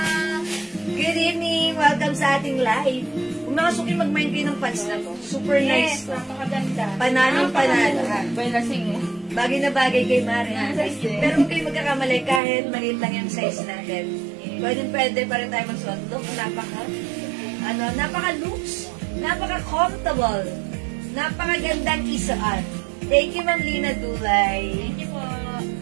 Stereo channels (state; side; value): drops out; left; at 12.4 s